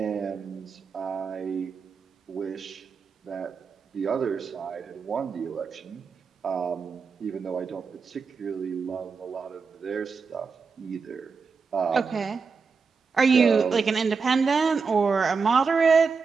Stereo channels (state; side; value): quieter; left; 5.2 dB